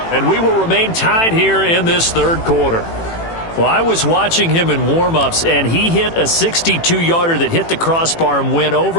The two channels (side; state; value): right; late; 18 ms